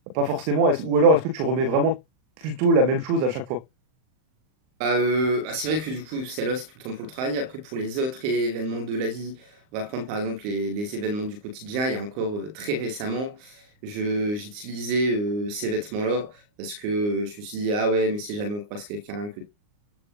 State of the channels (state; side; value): late; left; 39 ms